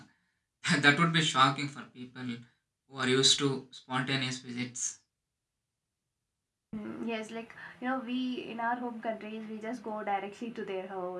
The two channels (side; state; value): both; identical; correlation 1.00